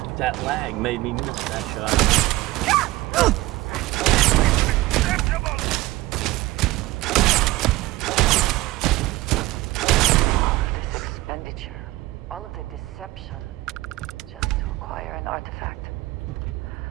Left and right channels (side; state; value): left; quieter; 18.7 dB